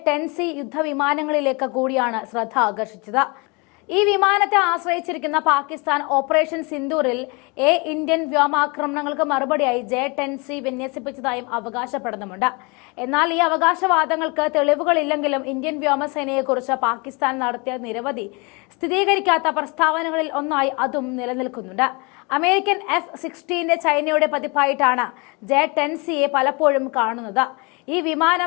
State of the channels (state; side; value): quieter; right; 29.3 dB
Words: യുദ്ധവിമാനങ്ങളിലേക്ക് കൂടിയാണ് ശ്രദ്ധ ആകർഷിച്ചത്. ഈ വിമാനത്തെ ആശ്രയിച്ചിരിക്കുന്ന പാകിസ്ഥാൻ ഓപ്പറേഷൻ സിന്ദൂറിൽ ഇന്ത്യൻ വ്യോമാക്രമണങ്ങൾക്ക് മറുപടിയായി J-10C വിന്യസിപ്പിച്ചതായും അവകാശപ്പെടുന്നുമുണ്ട്. എന്നാൽ ഈ അവകാശവാദങ്ങൾക്ക് തെളിവുകളില്ലെങ്കിലും ഇന്ത്യൻ വ്യോമസേനയെക്കുറിച്ച് പാകിസ്ഥാൻ നടത്തിയ നിരവധി സ്ഥിരീകരിക്കാത്ത പ്രസ്താവനകളിൽ ഒന്നായി അതും നിലനിൽക്കുന്നുണ്ട്. അമേരിക്കൻ F-16 ചൈനയുടെ പതിപ്പായിട്ടാണ് J-10Cയെ പലപ്പോഴും കാണുന്നത്. ഈ